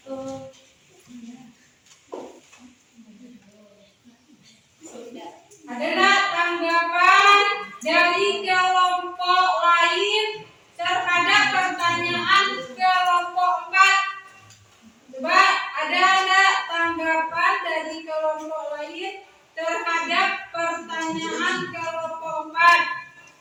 dari kelompok lain terhadap pertanyaan kelompok 4? Coba ada enggak tanggapan dari kelompok lain terhadap pertanyaan kelompok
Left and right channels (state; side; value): identical; both; correlation 1.00